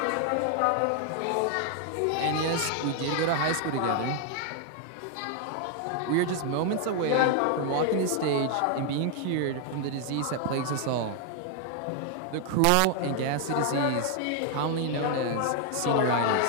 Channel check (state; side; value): different; both; correlation 0.00